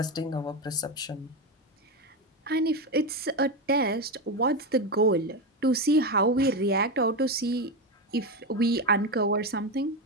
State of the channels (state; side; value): normal; both; correlation 0.14